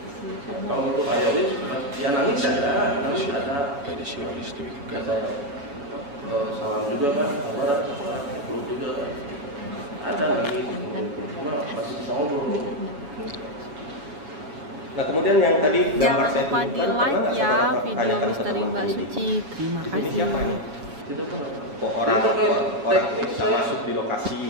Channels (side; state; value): left; late; 7.1 ms